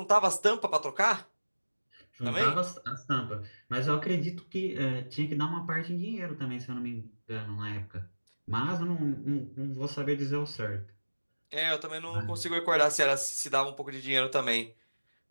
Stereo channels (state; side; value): inverted; both; correlation -1.00